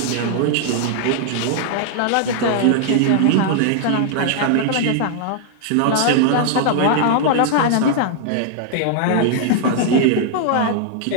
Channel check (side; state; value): both; different; correlation 0.00